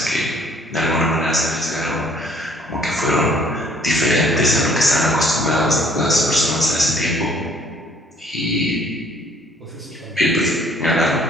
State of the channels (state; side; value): normal; both; correlation 0.59